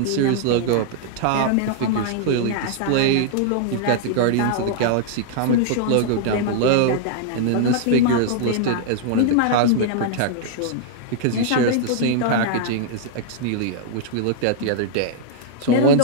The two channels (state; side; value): different; both; correlation 0.00